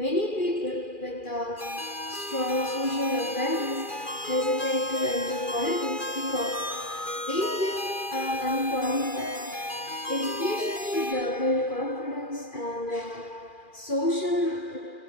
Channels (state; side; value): late; right; 2.4 ms